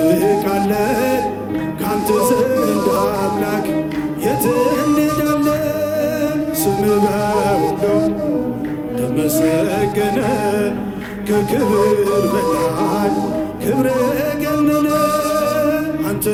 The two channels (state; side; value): identical; both; correlation 1.00